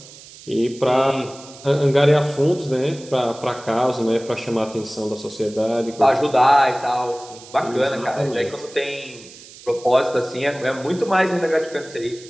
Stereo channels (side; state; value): right; noise; hiss, 19 dB below the sound